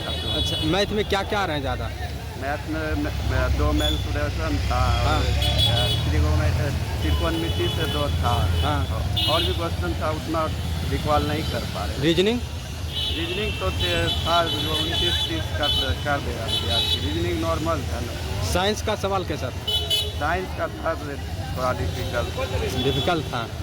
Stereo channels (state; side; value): identical; both; correlation 1.00